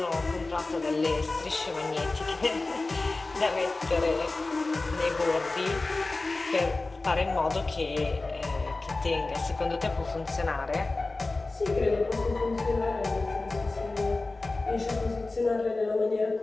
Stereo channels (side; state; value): right; quieter; 3.3 dB